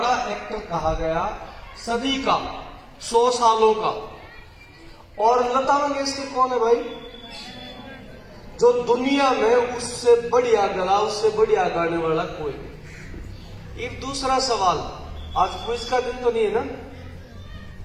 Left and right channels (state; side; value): identical; both; correlation 1.00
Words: एक्टर कहा गया, सदी का, 100 सालों का। और लता मंगेशकर कौन है भाई? जो दुनिया में उससे बढ़िया गला, उससे बढ़िया गाने वाला कोई नहीं। एक दूसरा सवाल, आज क्विज का दिन तो नहीं है ना?